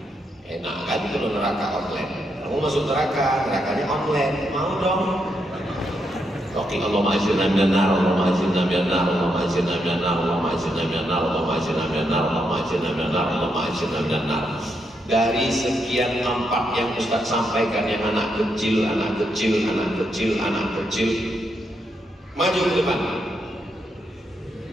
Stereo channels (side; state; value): both; normal; correlation 0.80